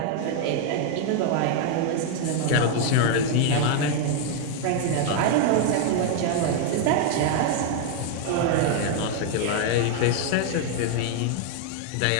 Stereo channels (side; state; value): both; different; correlation 0.00